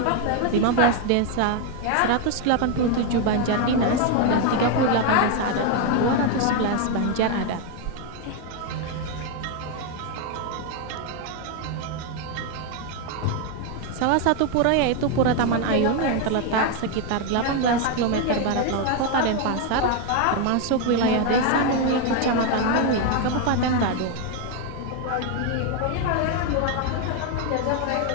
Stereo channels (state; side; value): different; both; correlation 0.01